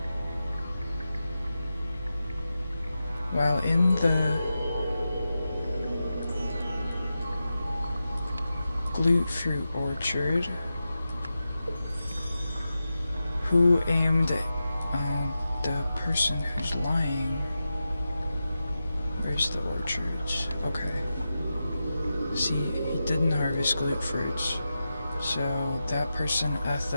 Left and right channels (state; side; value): inverted; both; correlation -0.91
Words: While in the glute fruit orchard, who aimed the person who's lying? Where's the orchards? Okay. See, he didn't harvest glute fruits, so that person ate